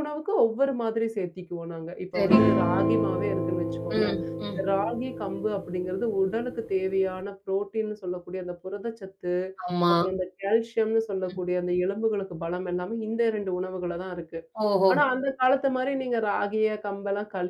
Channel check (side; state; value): both; identical; correlation 1.00